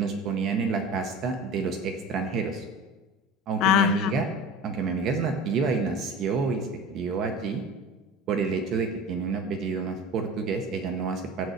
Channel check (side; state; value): both; normal; correlation 0.35